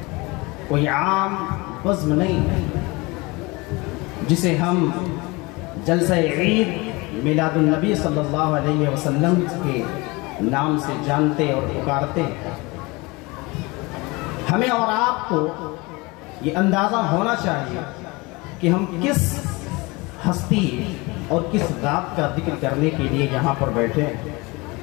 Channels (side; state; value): right; quieter; 24.8 dB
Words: کوئی عام بزم نہیں ہے، جسے ہم جلسہ عید میلاد النبی صلی اللہ علیہ وسلم کے نام سے جانتے اور پکارتے ہیں۔ ہمیں اور آپ کو یہ اندازہ ہونا چاہیے کہ ہم کس ہستی اور کس ذات کا ذکر کرنے کے لیے یہاں پر بیٹھے ہیں۔